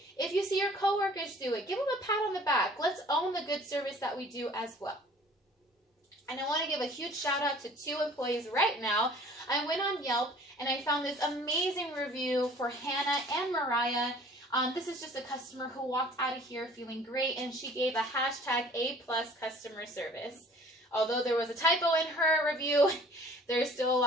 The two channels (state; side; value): normal; both; correlation 0.51